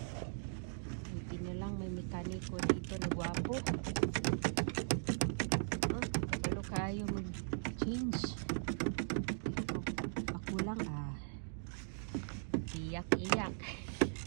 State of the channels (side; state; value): left; silent; digital silence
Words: Hindi na lang may mekaniko dito na gwapo. Ano kayo mag-change? Ako lang iyak-iyak.